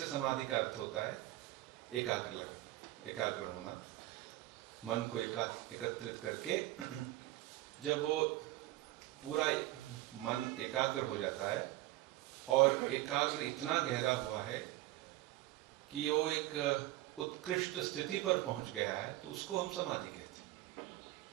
समाधि का अर्थ होता है एकाग्र होना, मन को एकत्रित करके जब वो पूरा मन एकाग्र हो जाता है और एकाग्र इतना गहरा हुआ है कि वो एक उत्कृष्ट स्थिति पर पहुंच गया है, तो उसको हम समाधि कहते हैं।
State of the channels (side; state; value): left; quieter; 16.7 dB